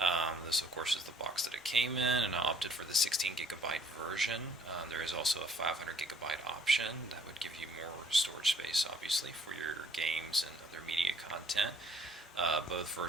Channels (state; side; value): normal; both; correlation 0.60